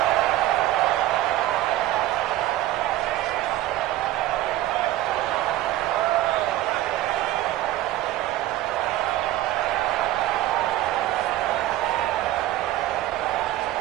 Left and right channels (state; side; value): quieter; left; 14.9 dB